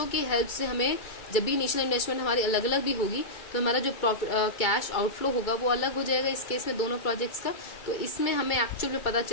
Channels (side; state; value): right; late; 2.3 ms